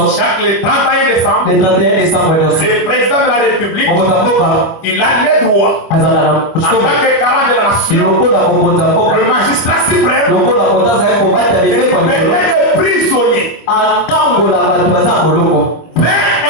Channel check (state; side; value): late; right; 25 ms